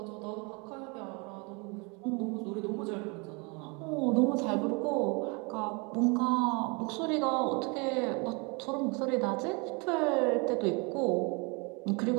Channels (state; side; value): quieter; left; 30.7 dB